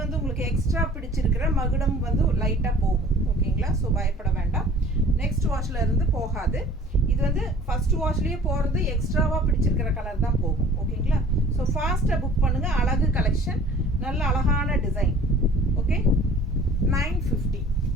வந்து உங்களுக்கு எக்ஸ்ட்ரா பிடிச்சிருக்கிற மகுடம் வந்து லைட்டாக போகும், ஓகேங்களா? ஸோ பயப்பட வேண்டாம், நெக்ஸ்ட் வாஷில் இருந்து போகாது. இது வந்து ஃபஸ்ட் வாஷ்லேயே போகிறது எக்ஸ்ட்ராவாக பிடிச்சிருக்கிற கலர் தான் போகும், ஓகேங்களா? ஸோ ஃபாஸ்ட்டாக புக் பண்ணுங்கள். அழகு கலெக்ஷன், நல்ல அழகான டிசைன். ஓகே, 950.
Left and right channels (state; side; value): normal; both; correlation 0.48